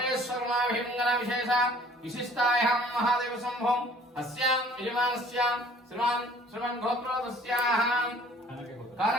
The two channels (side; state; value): both; normal; correlation 0.54